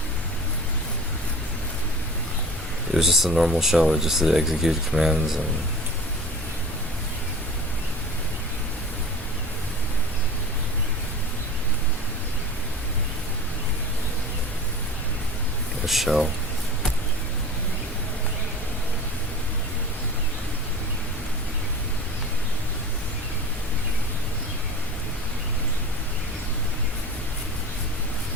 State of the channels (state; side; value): normal; both; correlation 0.38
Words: It was just a normal shell, it just did execute commands and a shell.